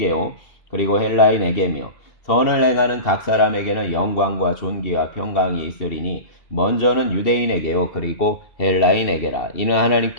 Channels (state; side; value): late; right; 2.7 ms